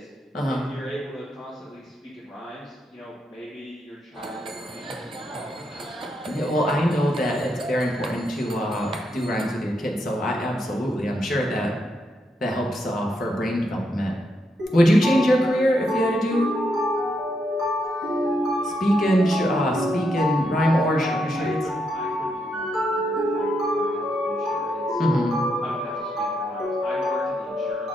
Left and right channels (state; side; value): normal; both; correlation 0.80